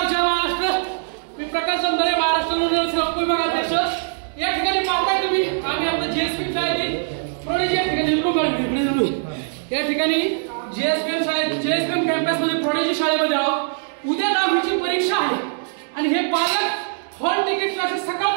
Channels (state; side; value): silent; left; digital silence